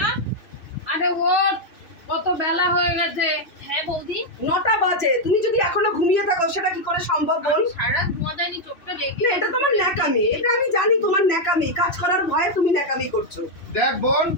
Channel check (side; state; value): right; late; 3.1 ms